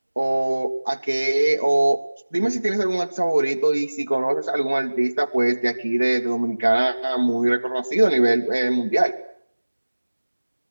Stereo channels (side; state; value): both; inverted; correlation -1.00